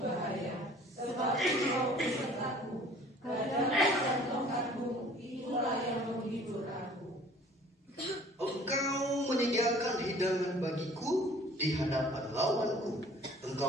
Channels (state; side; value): normal; both; correlation 0.51